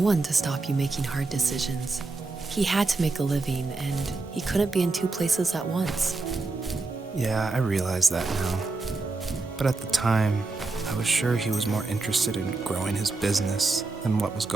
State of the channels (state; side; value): quieter; left; 3.6 dB